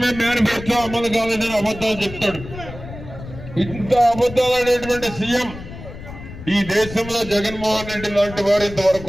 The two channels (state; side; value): noise; left; rumble, 13 dB below the sound